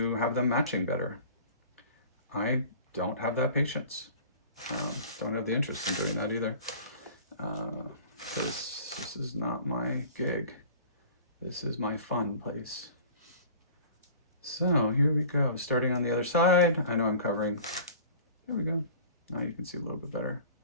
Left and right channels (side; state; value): both; inverted; correlation -0.44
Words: have them matching better. I don't have that patience. Don't have the interest in doing that either. This is not my gig. This is my fun place. So here we go. Starting on the other side. I know I'm covering. There we go. Now you can see a little bit better.